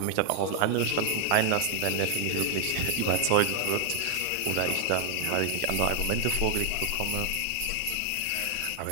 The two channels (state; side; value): different; both; correlation 0.00